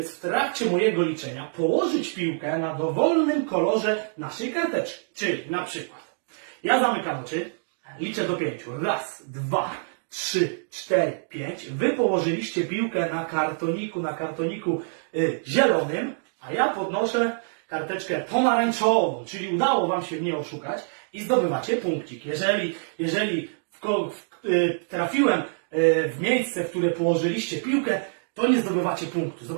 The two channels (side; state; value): left; silent; digital silence